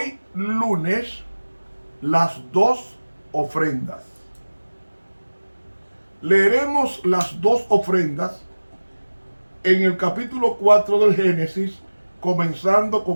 lunes, las dos ofrendas. Leeremos las dos ofrendas en el capítulo 4 del Génesis, comenzando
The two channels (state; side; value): inverted; both; correlation -1.00